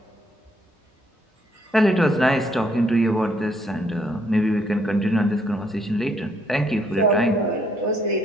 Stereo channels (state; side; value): normal; both; correlation 0.69